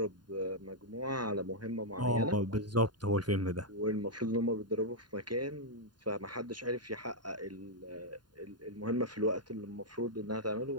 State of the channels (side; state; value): left; late; 0.70 ms